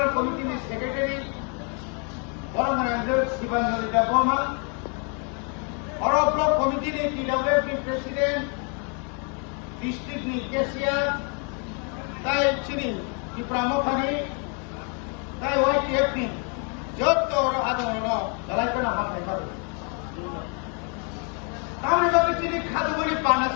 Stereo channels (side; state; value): right; quieter; 36.8 dB